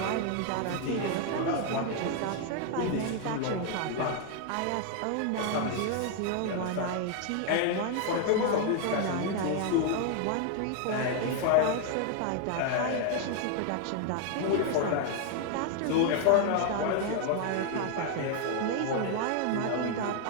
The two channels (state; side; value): different; both; correlation 0.00